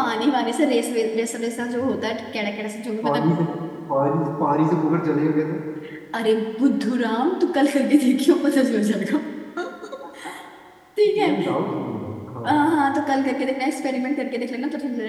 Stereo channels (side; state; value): both; identical; correlation 1.00